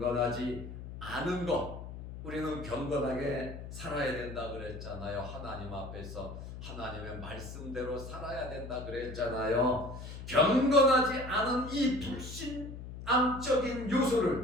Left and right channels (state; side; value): noise; left; hum, 10 dB below the sound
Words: 않은 것. 우리는 경건하게 살아야 된다 그랬잖아요. 하나님 앞에서 하나님의 말씀대로 살아야 된다 그랬잖아요. 경건하지 않은 이 불신앙적인